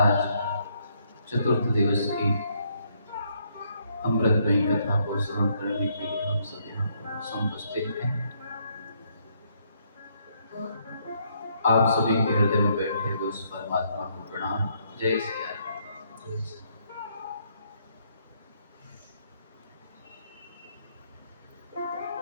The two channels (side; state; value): both; inverted; correlation -0.72